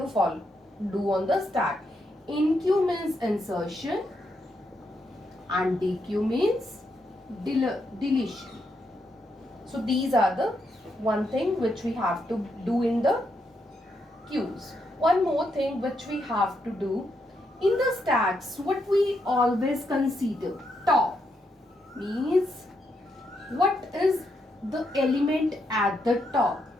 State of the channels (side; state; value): both; normal; correlation 0.80